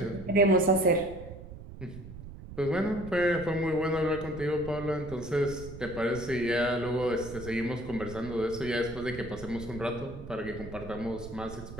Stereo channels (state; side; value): noise; right; rumble, 13 dB below the sound